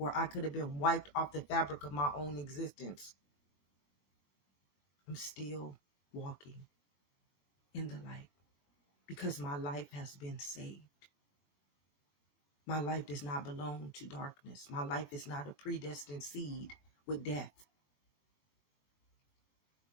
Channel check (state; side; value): late; right; 22 ms